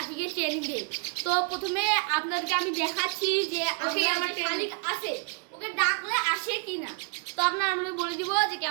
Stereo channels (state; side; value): quieter; left; 38.9 dB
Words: ট্রেনিং দিই। তো প্রথমে আপনাদেরকে আমি দেখাচ্ছি যে ওকে আমার ট্রেনিং আছে, ওকে ডাকলে আসে কিনা। তো আপনারা আমরা বলে দিব যে